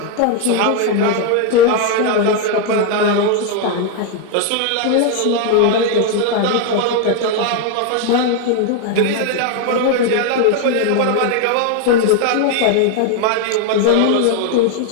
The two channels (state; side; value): different; both; correlation 0.01